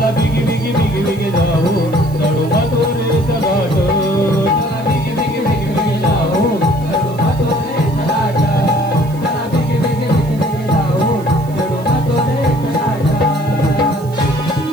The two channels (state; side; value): noise; right; hiss, 24 dB below the sound